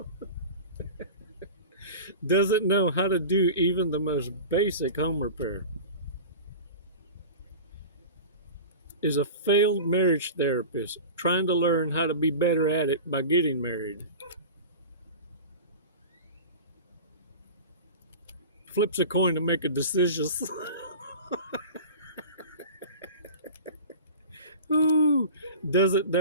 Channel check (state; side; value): inverted; both; correlation -0.34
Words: Doesn't know how to do even the most basic home repair. Is a failed marriage therapist trying to learn how to be better at it by getting married. Flips a coin to make a decision. Ooh, doesn't